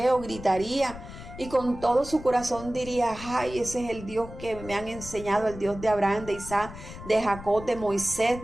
o gritaría, y con todo su corazón diría: ay, ese es el Dios que me han enseñado, el Dios de Abraham, de Isaac, de Jacob, de Moisés,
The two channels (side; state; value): left; noise; rumble, 13 dB below the sound